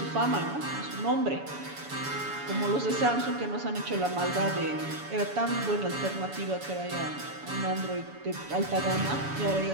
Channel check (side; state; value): left; late; 7.0 ms